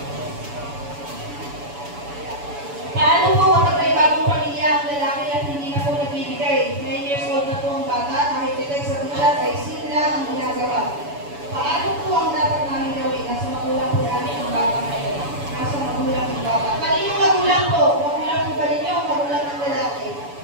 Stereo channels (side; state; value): left; late; 7.0 ms